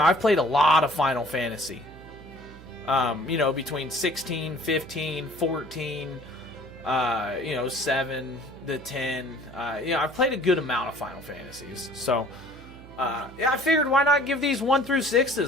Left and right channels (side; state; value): right; noise; hum, 18 dB below the sound